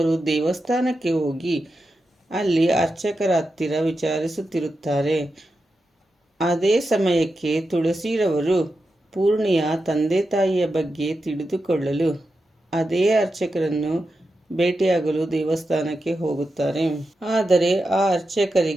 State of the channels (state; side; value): normal; both; correlation 0.89